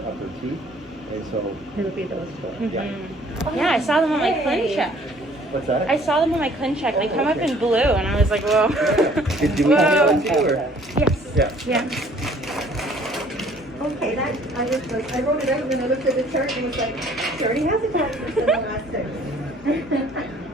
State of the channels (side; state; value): both; normal; correlation 0.57